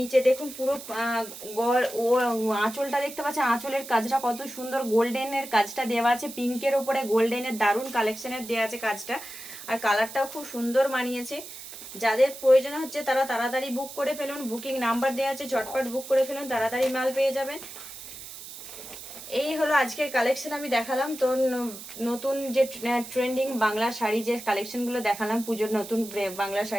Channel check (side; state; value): right; noise; hiss, 13 dB below the sound